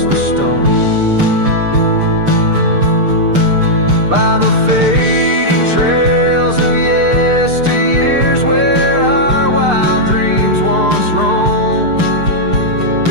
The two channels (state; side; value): late; left; 6.7 ms